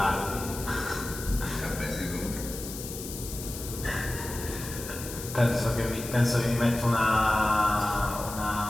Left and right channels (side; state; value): left; noise; hiss, 10 dB below the sound